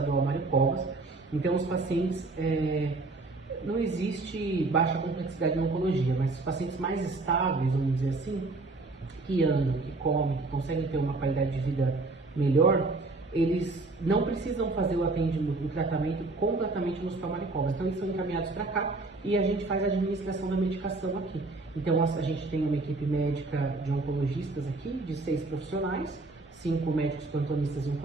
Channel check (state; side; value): quieter; left; 3.4 dB